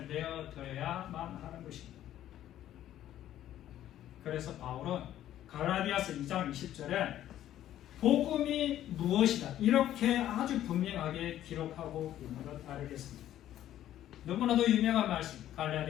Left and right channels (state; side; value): quieter; right; 12.3 dB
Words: 내어드려야만 하는 것입니다. 그래서 바울은 갈라디아서 2장 20절에 복음이 무엇이다 이렇게 아주 분명하게 기록하고 있는 것 알겠습니다. 너무나도 유명한 말씀,